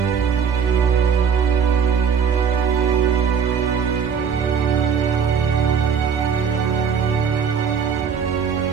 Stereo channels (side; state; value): left; quieter; 6.8 dB